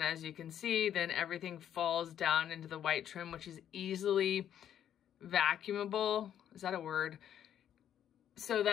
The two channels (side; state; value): right; quieter; 10.0 dB